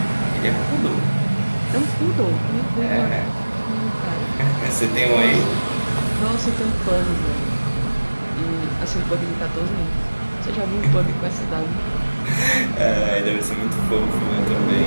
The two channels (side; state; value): both; inverted; correlation -1.00